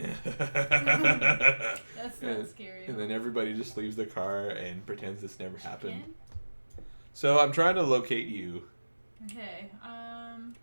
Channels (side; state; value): both; inverted; correlation -1.00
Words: That's not scary. And then everybody just leaves the car and pretends this never happened. So I'm trying to locate you. Okay.